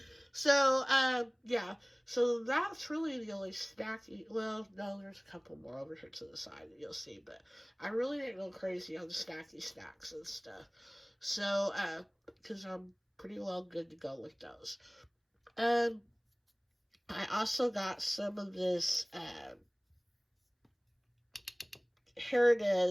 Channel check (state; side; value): identical; both; correlation 1.00